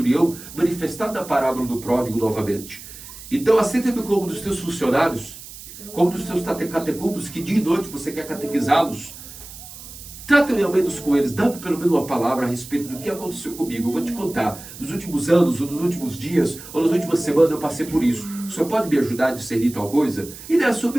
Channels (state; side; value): noise; right; hiss, 15 dB below the sound